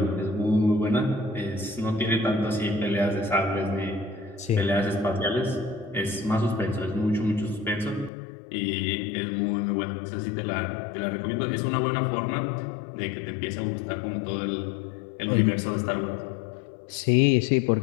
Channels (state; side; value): drops out; right; at 8.1 s